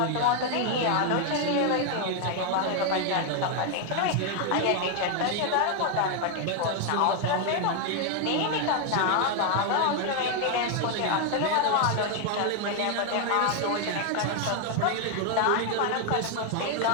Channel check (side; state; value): both; different; correlation 0.01